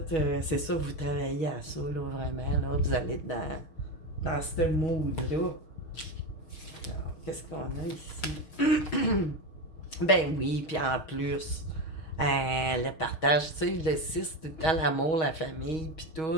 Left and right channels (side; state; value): right; late; 6.2 ms